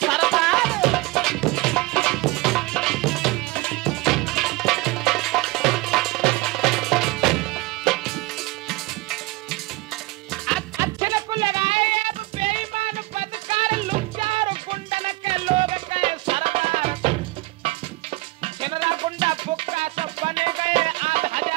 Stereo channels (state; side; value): quieter; left; 22.2 dB